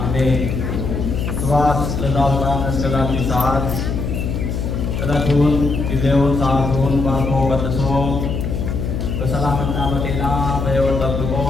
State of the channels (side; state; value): left; noise; hum, 2 dB below the sound